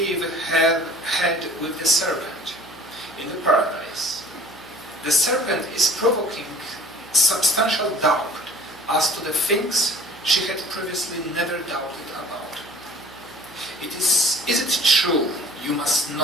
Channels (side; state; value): right; noise; hum, 23 dB below the sound